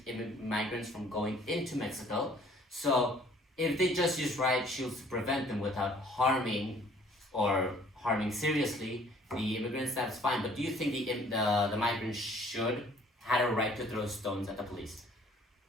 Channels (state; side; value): normal; both; correlation 0.57